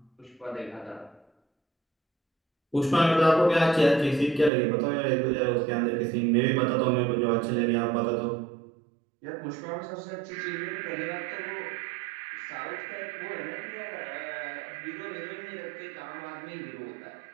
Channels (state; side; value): drops out; left; at 4.5 s